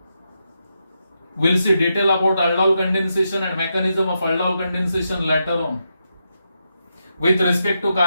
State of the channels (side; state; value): both; inverted; correlation -0.84